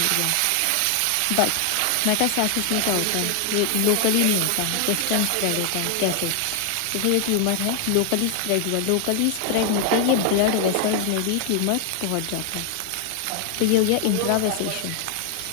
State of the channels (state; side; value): different; both; correlation 0.00